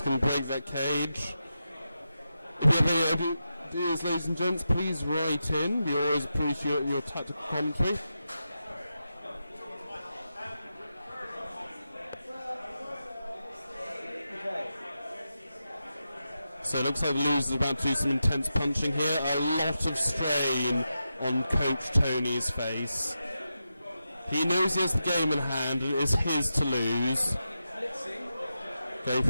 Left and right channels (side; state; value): both; inverted; correlation -0.89